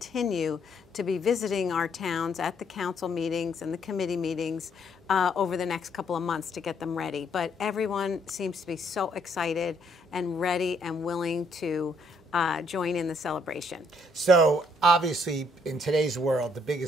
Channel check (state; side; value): normal; both; correlation 0.69